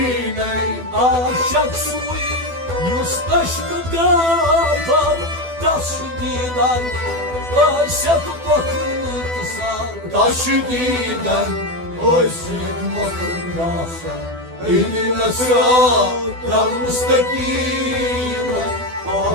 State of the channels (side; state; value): left; late; 12 ms